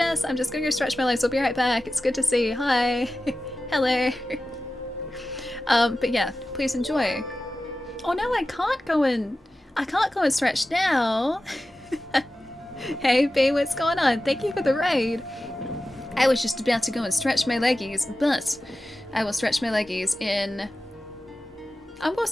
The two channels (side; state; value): both; normal; correlation 0.94